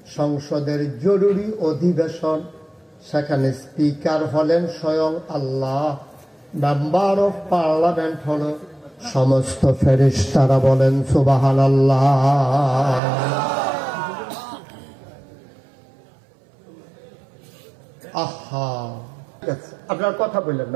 সংসদের জরুরি অধিবেশন। সেখানে স্পিকার হলেন স্বয়ং আল্লাহ, মেম্বার অফ পার্লামেন্ট হলো সমস্ত ফেরেশতারা। বলেন সুবহানাল্লাহ। আহা, আপনার কথা বললেন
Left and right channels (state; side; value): drops out; left; at 13.0 s